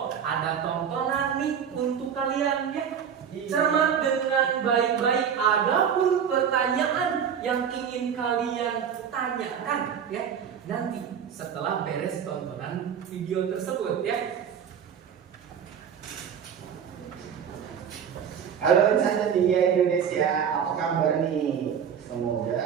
ada tontonan nih untuk kalian ya. Cermat dengan baik-baik. Adapun pertanyaan yang ingin kalian tanyakan ya, nanti setelah beres tontonan video tersebut ya. Halo insan ceria Indonesia, apa kabar nih?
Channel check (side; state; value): left; quieter; 7.9 dB